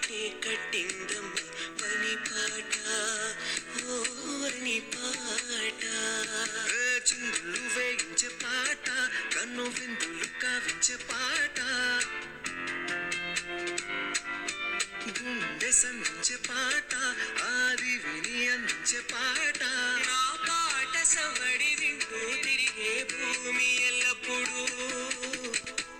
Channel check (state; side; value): identical; both; correlation 1.00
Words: కట్టిందమ్మ పని పాట ఓ వని పాట చిందులు వేయించే పాట కన్ను విందులు కావించే పాట గుండె సంధించే పాట ఆది విని అందించే పాట నా పాట సవడి వింటూ తిరిగే భూమి ఎల్లప్పుడూ